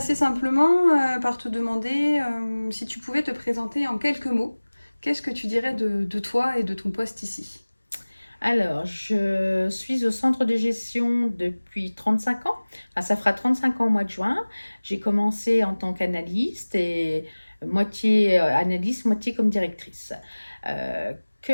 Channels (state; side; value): inverted; both; correlation -1.00